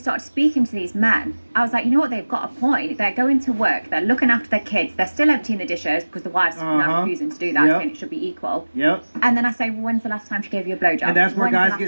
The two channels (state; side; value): inverted; both; correlation -1.00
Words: speaking to these men, I was like, you know what, they've got a point. They're going to work, they're looking after their kids, they're still emptying the dishes because the wife's now refusing to do that, saying it should be equal. Yep. And then I say, well, when's the last time she gave you a blowjob? And that's where guys